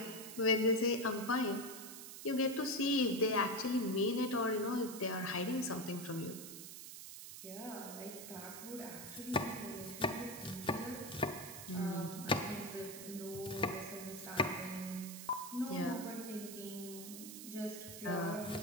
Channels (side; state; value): right; noise; hiss, 11 dB below the sound